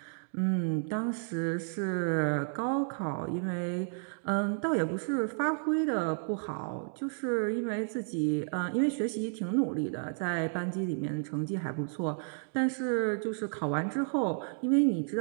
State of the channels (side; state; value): left; silent; digital silence